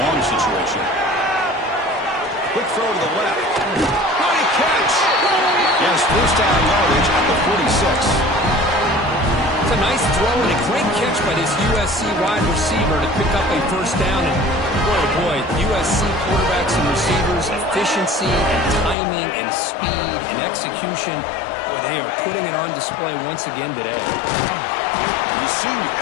situation. Quick throw to the left. Nice catch. Yes, first down yardage at the 46. It's a nice throw and a great catch by this USC wide receiver to pick up a first down. And boy, oh boy, USC quarterbacks and receivers, efficiency and timing and speed and execution. Boy, they are putting it on display once again today. The senior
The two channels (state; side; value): drops out; right; at 18.9 s